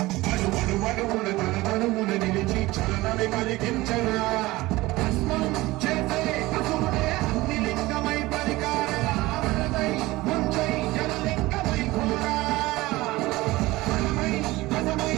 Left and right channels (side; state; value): left; quieter; 19.5 dB